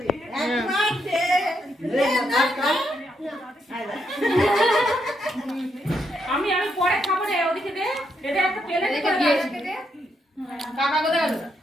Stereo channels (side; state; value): both; normal; correlation 0.79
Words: আমি পরে খাবো রে ওদিকে দে এটা একটা প্লেটে করে দে কাকা কোথায় গেল